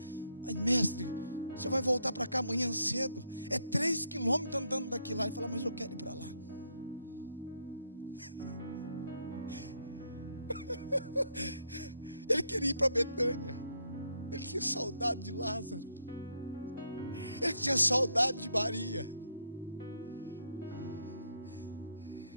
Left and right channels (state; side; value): inverted; both; correlation -0.75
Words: Mas mestre, você vai voltar para cá amanhã cedo, é 3 quilômetros andando daqui lá. Ele falou: mas eu quero ir para lá. Ele queria ir para Betânia. Ele tinha saudade de Lázaro. Ele tinha saudade de Maria.